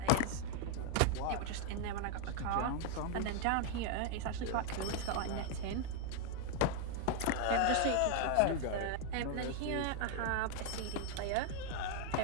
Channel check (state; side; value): different; both; correlation 0.00